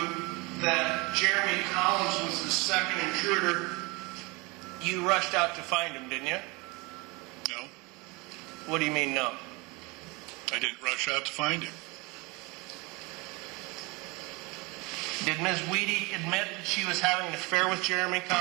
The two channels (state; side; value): quieter; left; 26.1 dB